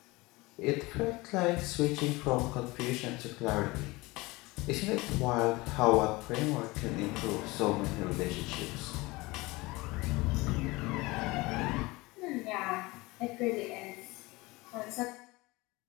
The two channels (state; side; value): quieter; right; 22.4 dB